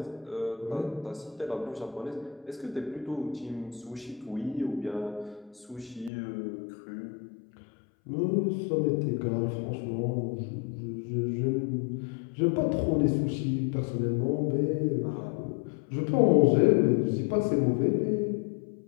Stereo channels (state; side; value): drops out; right; at 6.1 s